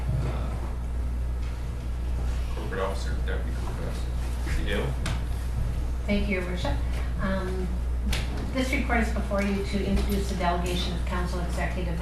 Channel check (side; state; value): both; identical; correlation 1.00